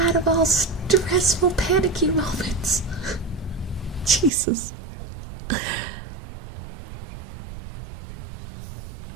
of all stressful, panicky moments. Jesus.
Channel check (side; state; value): left; drops out; at 4.3 s